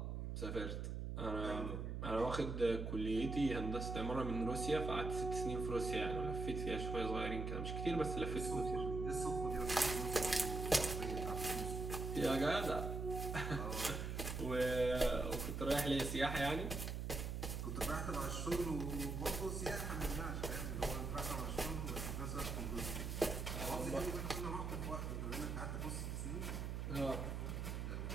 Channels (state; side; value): noise; right; hum, 3 dB below the sound